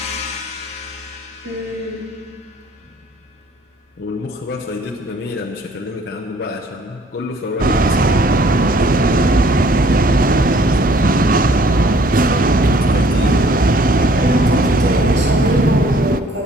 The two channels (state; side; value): normal; both; correlation 0.59